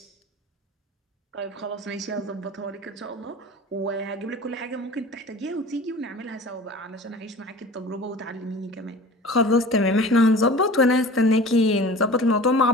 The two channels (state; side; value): normal; both; correlation 0.40